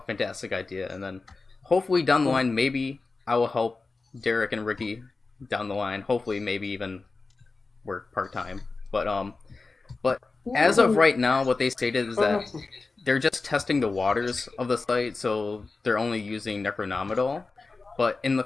idea. And then hopefully down the line, maybe I will help Derek and Ricky down the line. Hopefully maybe even work part-time. But as of right now, what they stated is that they're just testing the waters of the site, so they're only using Necronomidal. But in the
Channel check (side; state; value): right; quieter; 3.9 dB